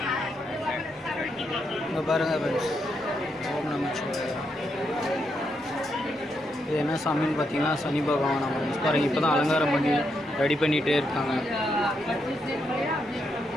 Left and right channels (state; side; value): normal; both; correlation 0.80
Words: இங்கே பாருங்கள் ஃப்ரெண்ட்ஸ் ஓம் நமச்சிவாய. இது என்ன சாமின்னு பார்த்தீங்கன்னா சனி பகவான் ஃப்ரெண்ட்ஸ் பாருங்கள். இப்போ தான் அலங்காரம் பண்ணி ரெடி பண்ணிகிட்டே இருக்காங்க.